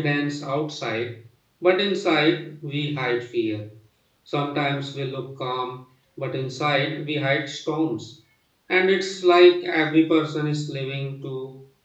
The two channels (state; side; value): identical; both; correlation 1.00